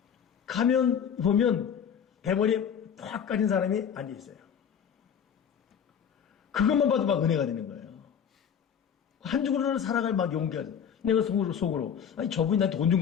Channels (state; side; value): quieter; right; 7.9 dB